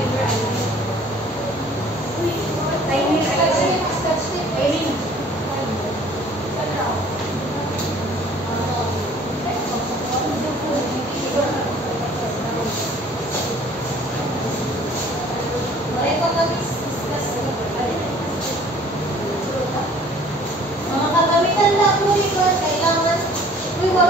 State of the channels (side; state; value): both; normal; correlation 0.53